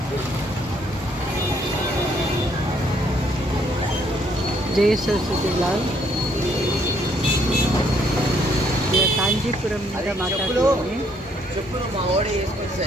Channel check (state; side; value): normal; both; correlation 0.68